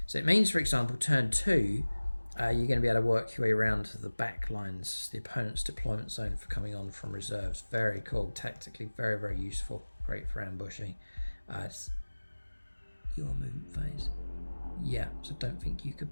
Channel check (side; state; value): both; inverted; correlation -1.00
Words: So it means, for example, turn 2, you're going to be able to work your way around the back lines, the opponent's deployment zone for coming on from reserves. Very cool, tactically very, very useful. Great for ambushing. It's your movement phase. Yeah, so don't think you could